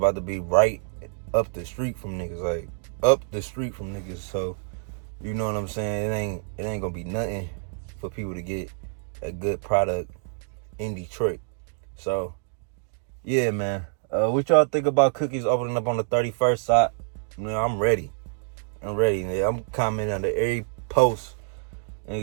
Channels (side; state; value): left; silent; digital silence